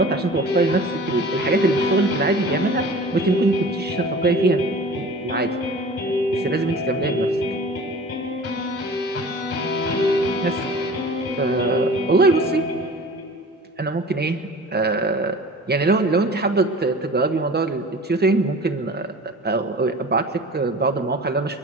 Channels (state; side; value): normal; both; correlation 0.41